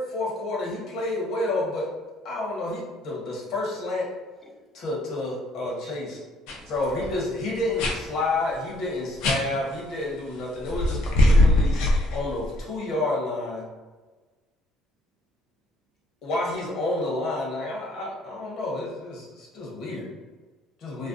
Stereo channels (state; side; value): normal; both; correlation 0.65